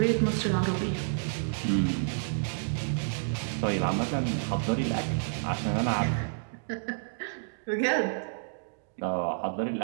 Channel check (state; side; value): silent; left; digital silence